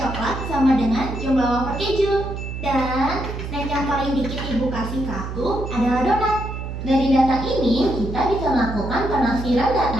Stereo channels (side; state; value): right; noise; hum, 7 dB below the sound